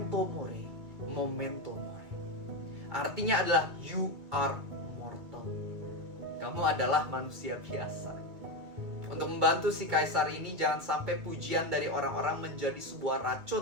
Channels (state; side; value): late; left; 2.3 ms